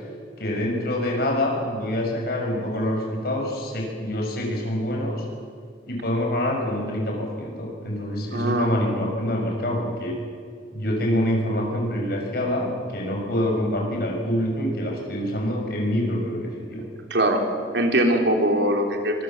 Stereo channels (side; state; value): both; normal; correlation 0.41